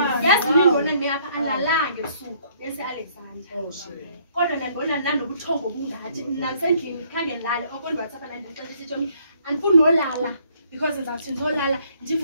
Yazi nindibona nimi apha andlalanga ebusuku bese Alexander. Kodwa ndibona nanobuthongo obungathi namsendlini khange ndilale okondwatsapha nandixelisa Tshomi andifuni nolala because ndizawuthi ndizolala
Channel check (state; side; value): inverted; both; correlation -0.64